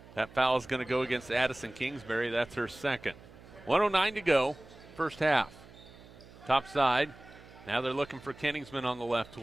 That foul is going to go against Addison Kingsbury. That's her second. 1:09 to go. First half. Top side. Now they're looking for Kenningsman on the left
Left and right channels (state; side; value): noise; right; hum, 21 dB below the sound